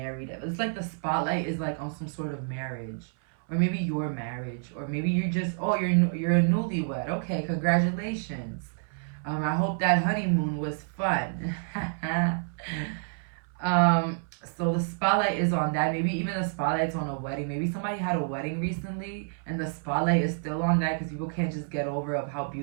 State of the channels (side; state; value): left; silent; 59 dB below the other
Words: It's like the spotlight is like on some sort of marriage, or maybe your marriage, or maybe you're just, you're a newlywed. Okay, congratulations. I hope that honeymoon was fun. So the spotlight is on that. Maybe even the spotlight's on a wedding. Maybe somebody had a wedding recently and the spotlight is still on that because people can't just get over of how